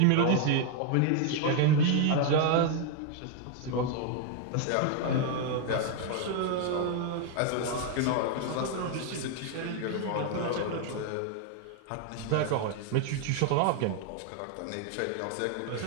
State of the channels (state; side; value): different; both; correlation 0.00